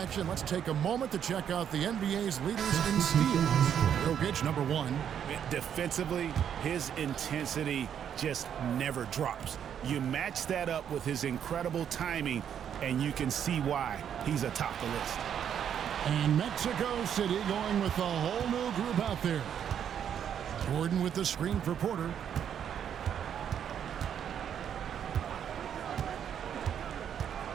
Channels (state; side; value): quieter; left; 8.8 dB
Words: let's take a moment to check out the NBA's leaders in steals. Jokic, number 1. Defensively, his intensity just never drops. You match that up with his incredible timing, and you can see why he's atop the list. And Mexico City going with a whole new group out there. Gordon with the screen for Porter.